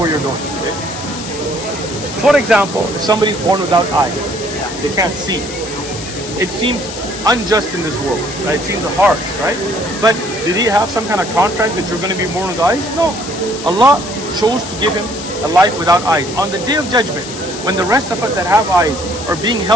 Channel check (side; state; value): left; noise; hiss, 10 dB below the sound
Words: you're going. Okay? For example, if somebody's born without eyes, they can't see. It seems unjust in this world, right? It seems harsh, right? But did he have some kind of contract that you're going to be born with eyes? No. Allah chose to give him a life without eyes. On the Day of Judgment, when the rest of us that have eyes are being